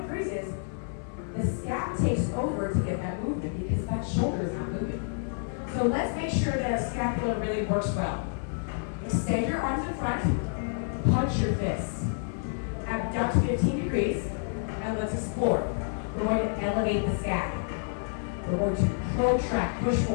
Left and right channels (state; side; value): silent; right; 59 dB below the other